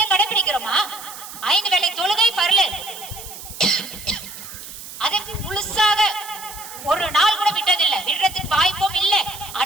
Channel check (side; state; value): right; noise; hiss, 13 dB below the sound